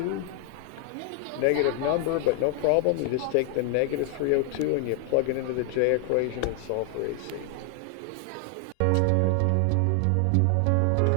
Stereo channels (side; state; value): both; different; correlation 0.00